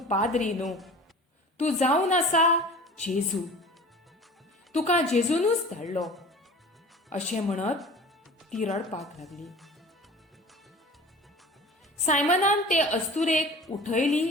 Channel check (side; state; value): both; normal; correlation 0.41